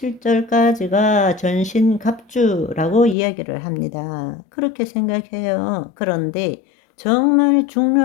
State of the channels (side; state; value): right; drops out; at 3.2 s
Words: 전신갑주라고 이야기를 합니다. 그렇게 생각해요. 그런데 정말